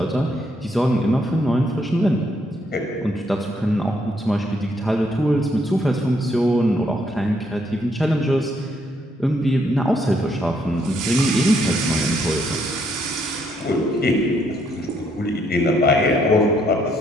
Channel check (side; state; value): both; normal; correlation 0.72